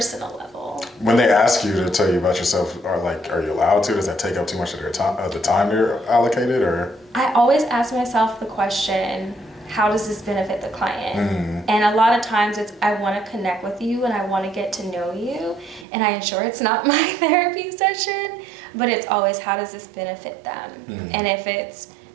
level. When they ask you to tell you about yourself, are you allowed to? Does that take up too much of their time, the time they're allocated, or? I always ask myself the question, how does this benefit the client? And a lot of times it's, I want to connect with you and I want to get to know you, and I ensure it's not my therapy session, but it's always, how does this benefit them? And if it's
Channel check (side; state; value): left; drops out; at 15.9 s